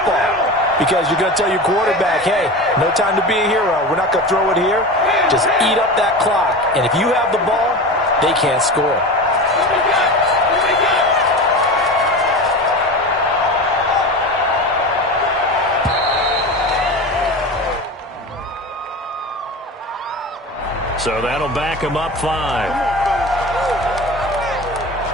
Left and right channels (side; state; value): both; normal; correlation 0.29